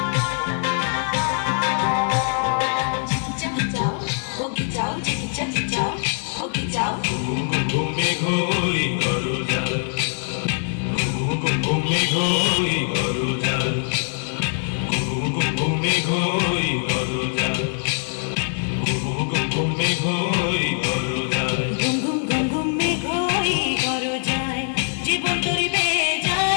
ঘুমে ঘুরি করো যার ঘুমে ঘুরি করো যার ঘুমে ঘুরি করো যার ঘুমে ঘুরি করো যার ঘুম ঘুম ঘুম ঘুমে ঘুরি করো যায় জীবন তরি বেয়ে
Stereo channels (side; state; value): right; silent; 64 dB below the other